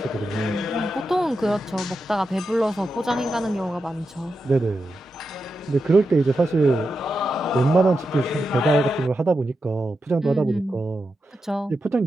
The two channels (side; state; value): both; normal; correlation 0.88